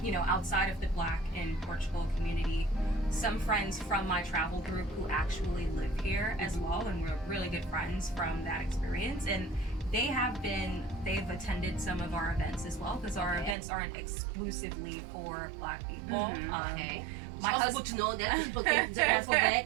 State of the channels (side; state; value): left; drops out; at 13.6 s